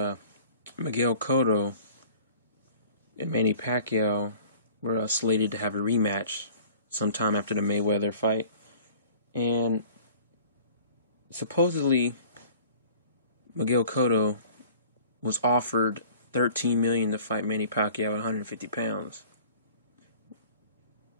Miguel Cotto and Manny Pacquiao were slated to have a rematch sometime after the Mayweather fight. And supposedly Miguel Cotto was offered $13 million to fight Manny Pacquiao at 150 pounds,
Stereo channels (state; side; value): inverted; both; correlation -0.48